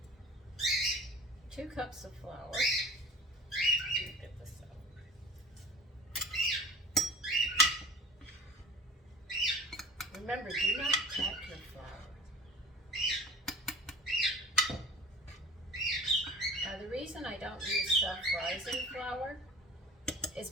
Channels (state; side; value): normal; both; correlation 0.41